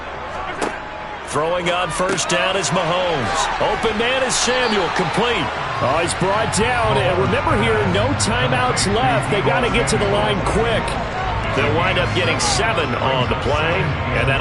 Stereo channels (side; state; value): both; identical; correlation 1.00